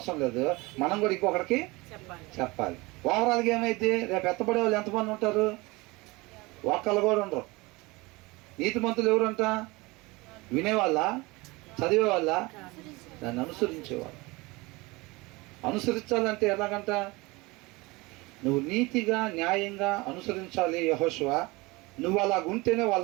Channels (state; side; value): quieter; left; 23.5 dB